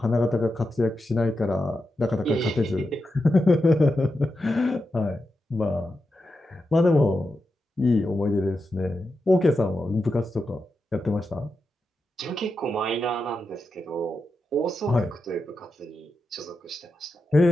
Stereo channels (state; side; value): normal; both; correlation 0.88